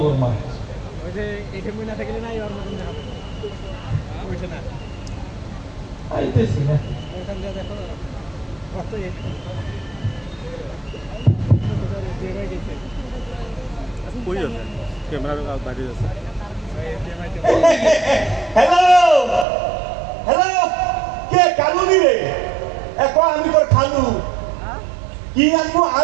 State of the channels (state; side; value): drops out; left; at 19.5 s